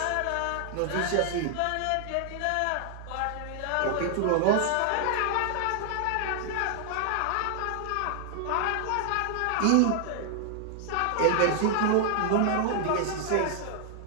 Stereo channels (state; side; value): different; both; correlation 0.00